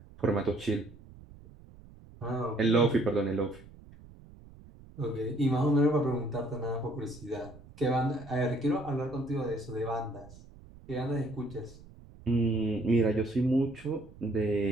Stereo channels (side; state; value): right; noise; rumble, 21 dB below the sound